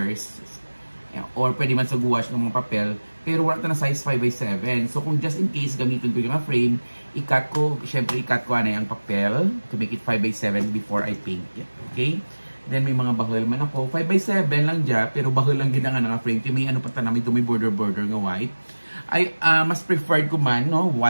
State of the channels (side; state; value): both; inverted; correlation -1.00